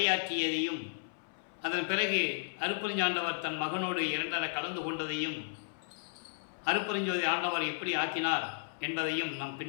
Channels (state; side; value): silent; right; 55 dB below the other